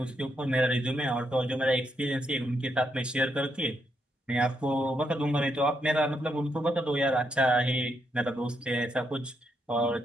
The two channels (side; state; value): both; normal; correlation 0.79